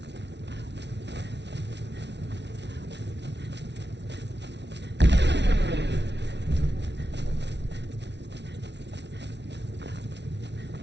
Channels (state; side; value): late; left; 0.50 ms